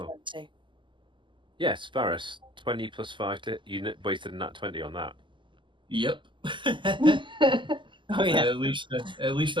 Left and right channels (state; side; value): late; left; 0.24 ms